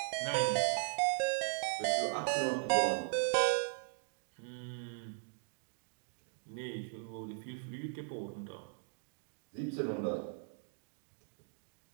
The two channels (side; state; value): left; silent; digital silence